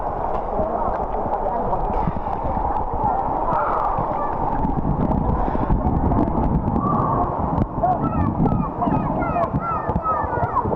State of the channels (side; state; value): both; identical; correlation 1.00